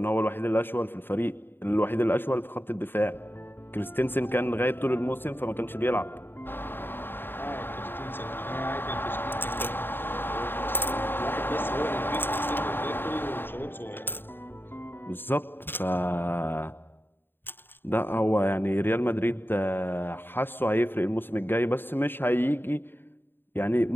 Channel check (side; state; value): right; late; 0.098 ms